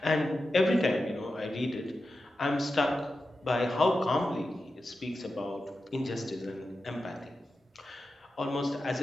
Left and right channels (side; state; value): both; normal; correlation 0.91